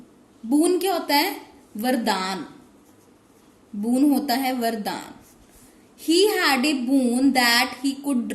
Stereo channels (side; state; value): both; identical; correlation 1.00